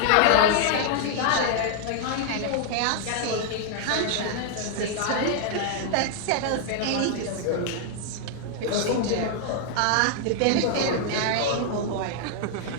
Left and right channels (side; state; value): both; different; correlation 0.00